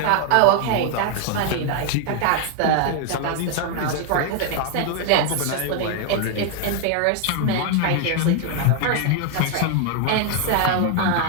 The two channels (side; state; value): both; different; correlation 0.00